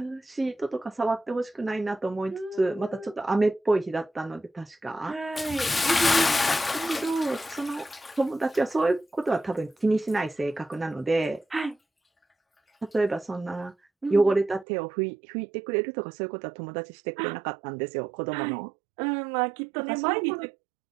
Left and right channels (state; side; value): drops out; left; at 14.7 s